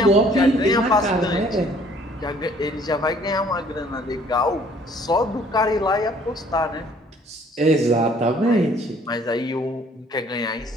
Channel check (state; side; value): normal; both; correlation 0.58